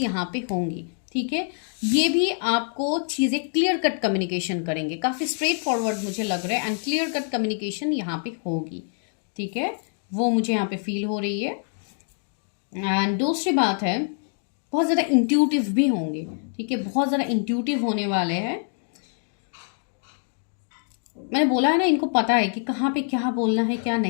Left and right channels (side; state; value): right; silent; 56 dB below the other